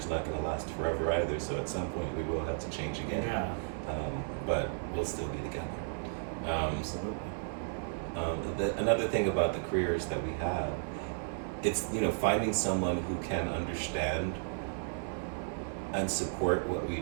not going to last forever either. So at some point we will have to change again. Yeah. But we'll still be together. Absolutely. Another thing about the careers that we have, it's finding someone who can understand and support what we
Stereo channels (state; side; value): silent; left; digital silence